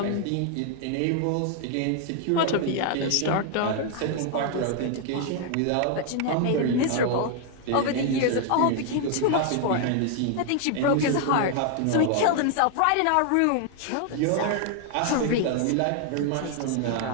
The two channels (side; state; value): both; different; correlation 0.00